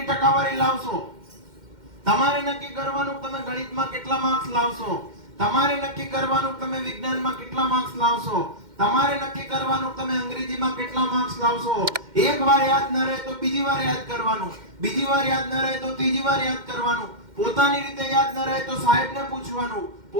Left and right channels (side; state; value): left; late; 2.1 ms